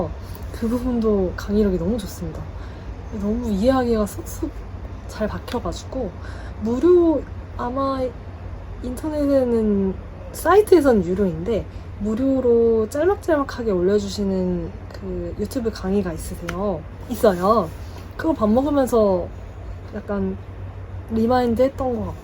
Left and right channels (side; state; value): both; identical; correlation 1.00